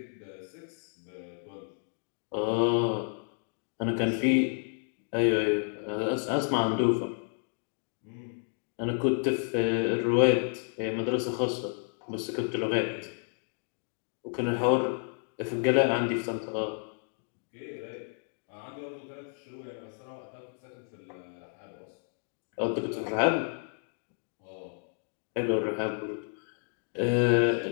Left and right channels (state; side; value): silent; right; 57 dB below the other